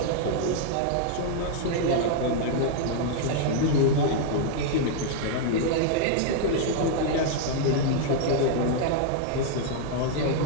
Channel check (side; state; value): both; different; correlation -0.01